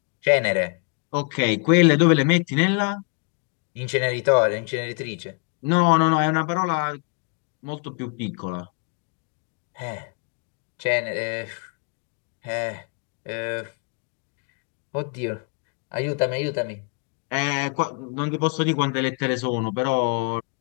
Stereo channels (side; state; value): right; quieter; 35.3 dB